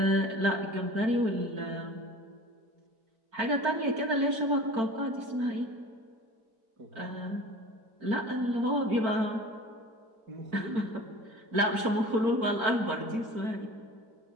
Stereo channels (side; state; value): left; late; 4.5 ms